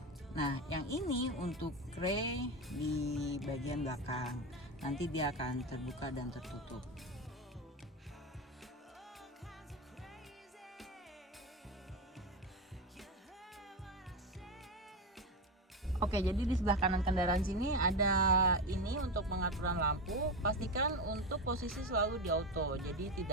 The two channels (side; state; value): both; normal; correlation 0.17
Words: Nah, yang ini untuk kray di bagian belakang. Nanti dia akan terbuka dan tertutup. Oke, jadi di sebelah kanan kendaraan sini ada ini untuk pengaturan lampu. Pastikan untuk posisi selalu di auto. Jadi